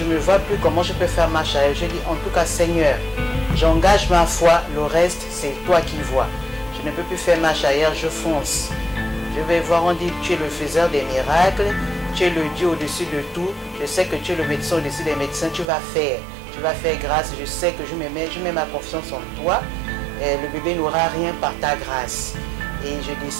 ne vois plus comment je peux faire marche arrière. Je dis en tout cas, Seigneur, j'engage ma foi, le reste, c'est toi qui vois. Je ne peux plus faire marche arrière, je fonce. Je vais voir, on dit, tu es le faiseur des miracles, tu es le Dieu au-dessus de tout. Je sais que tu es le médecin au-dessus des médecins, tu vas faire grâce. Je sais que je mets ma confiance en toi. Le bébé n'aura rien par ta grâce. Et je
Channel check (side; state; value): left; drops out; at 15.7 s